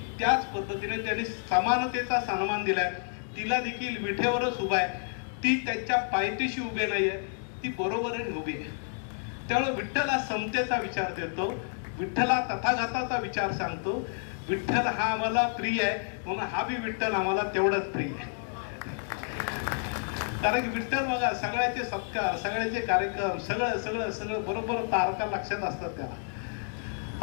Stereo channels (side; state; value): right; silent; 58 dB below the other